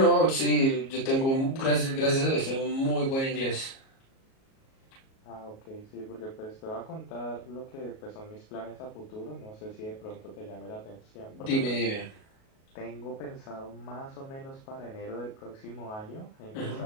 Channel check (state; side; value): late; right; 37 ms